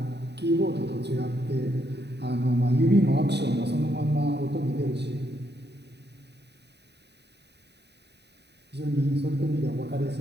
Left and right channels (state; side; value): late; left; 0.49 ms